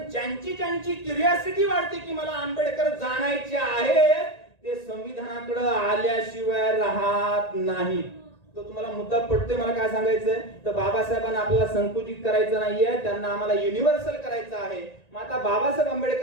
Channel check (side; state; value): right; late; 1.9 ms